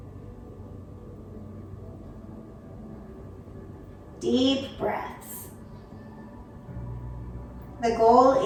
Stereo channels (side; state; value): both; identical; correlation 1.00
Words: Deep breaths. The goal